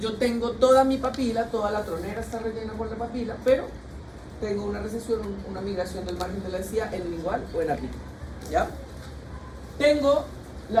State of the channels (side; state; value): both; identical; correlation 1.00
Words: tengo toda mi papila, toda la tronera está rellena por la papila, pero tengo una recesión, una migración del margen de la encía en lingual o en apical, ¿ya? Tengo